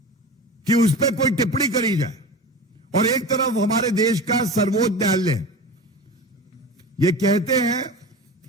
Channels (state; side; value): normal; both; correlation 0.31